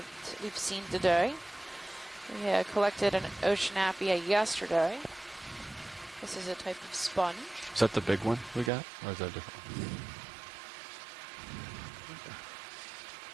we've seen today. We collected an Oceanapia yesterday. This is a type of sponge. Is that the big one we got, or is that different?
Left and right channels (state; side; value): drops out; left; at 8.7 s